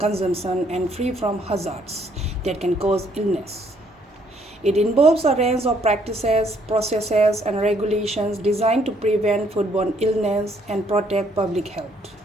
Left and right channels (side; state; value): both; normal; correlation 0.67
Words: and free from hazards that can cause illness. It involves a range of practices, processes, and regulations designed to prevent foodborne illness and protect public health.